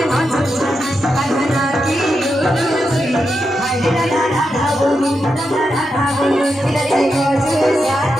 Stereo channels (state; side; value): normal; both; correlation 0.86